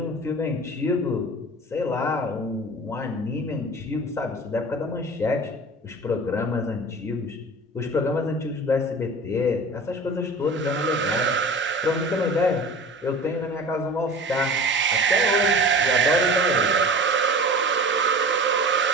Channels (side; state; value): both; normal; correlation 0.38